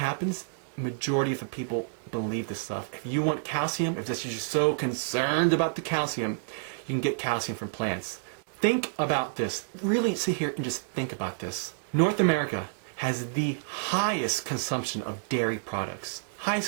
Majority of the people believe this stuff. If you want calcium, if you're so concerned about the calcium, you can get calcium from plants. Think about this. Really sit here and just think about this. North America has the highest consumption of dairy products.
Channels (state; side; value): silent; left; digital silence